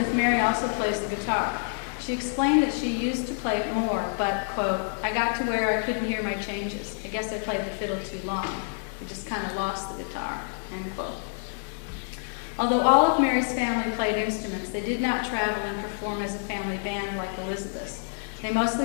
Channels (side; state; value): right; silent; digital silence